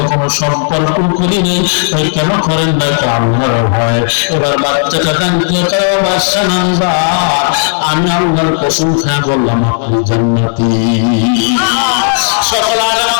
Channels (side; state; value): right; silent; digital silence